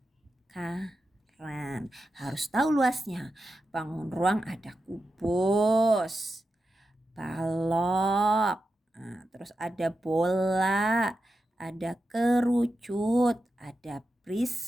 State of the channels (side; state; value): both; normal; correlation 0.89